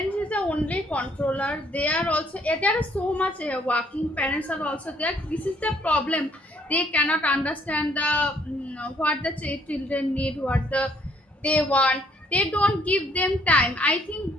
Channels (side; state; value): both; normal; correlation 0.65